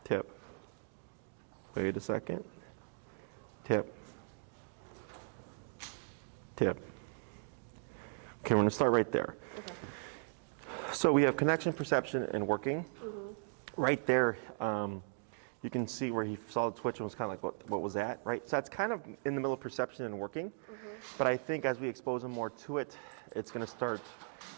tap. Wait a second. Tap, tap. Okay, we're gonna start right there. Okay. So we have connection, perception, and working. Right there, you can see where he saw the twitch and was kind of like, what was that, right? So that's kind of in the middle of perception and working. But I think as we expose him more to it, it's gonna start,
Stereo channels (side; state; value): left; silent; digital silence